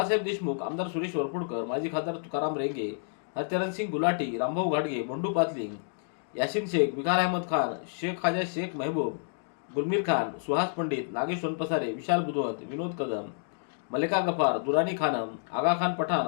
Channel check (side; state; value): right; silent; digital silence